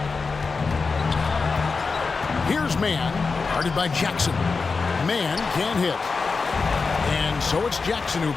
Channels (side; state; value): right; quieter; 4.5 dB